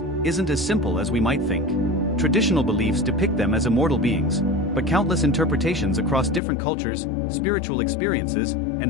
isn't as simple as we might think. Traditional beliefs depict them as immortal beings, but countless interpretations across different cultures, spiritual experiences,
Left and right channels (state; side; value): drops out; right; at 6.4 s